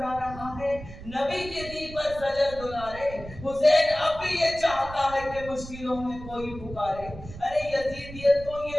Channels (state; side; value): noise; right; rumble, 14 dB below the sound